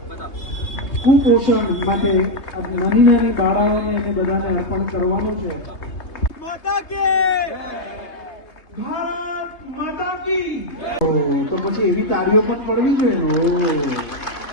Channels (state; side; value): late; right; 3.3 ms